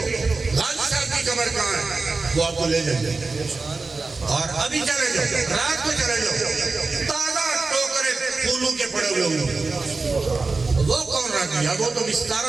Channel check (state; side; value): quieter; left; 3.9 dB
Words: صاحب کی قبر کہاں ہے, وہ آپ کو لے جائیں گے. اور ابھی چلے جاؤ, رات کو چلے جاؤ, تازہ ٹوکرے پھولوں کے پڑے ہوئے ہوں. وہ کون رہ گیا؟ وہ تو